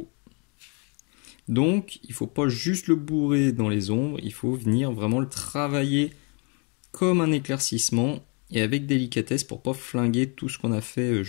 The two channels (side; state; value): right; quieter; 34.7 dB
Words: Donc, il faut pas juste le bourrer dans les ombres, il faut venir vraiment le travailler comme un éclaircissement et avec délicatesse pour pas flinguer tout ce qu'on a fait